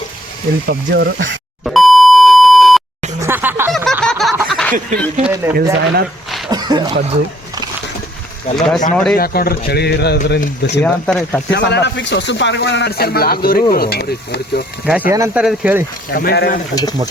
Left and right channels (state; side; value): normal; both; correlation 0.69